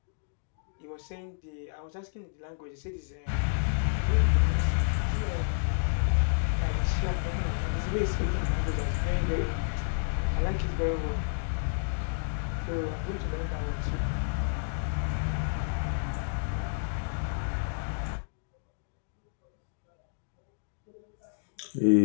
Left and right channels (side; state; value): right; silent; digital silence